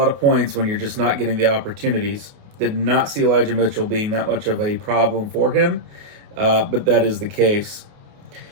of points when you're just not getting the opportunities. Did not see Elijah Mitchell being that much of a problem for him, but that is the case.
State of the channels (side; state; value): left; late; 28 ms